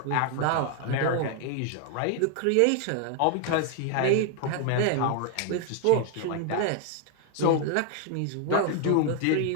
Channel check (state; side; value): different; both; correlation 0.00